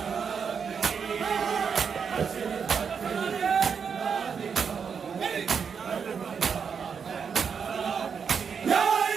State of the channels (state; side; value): quieter; left; 6.4 dB